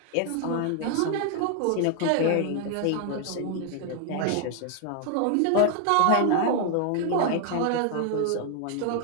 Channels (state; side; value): different; both; correlation 0.00